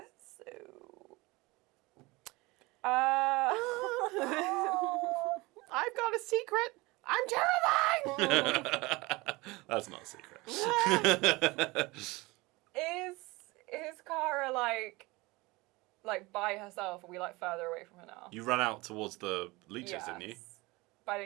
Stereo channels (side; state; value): left; quieter; 22.8 dB